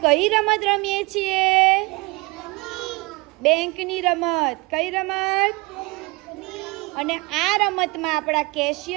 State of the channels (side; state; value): left; quieter; 25.9 dB